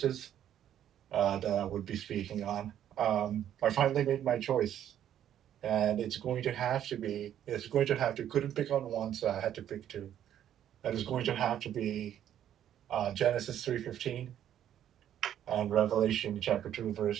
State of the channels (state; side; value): quieter; left; 10.6 dB